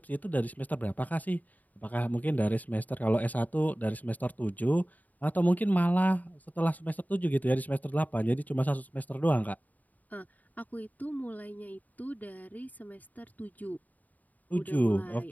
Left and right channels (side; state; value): right; late; 0.078 ms